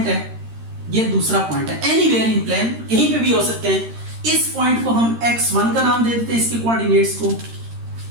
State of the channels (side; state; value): left; late; 13 ms